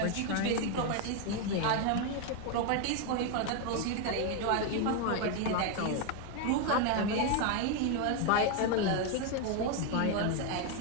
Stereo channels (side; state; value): both; different; correlation 0.01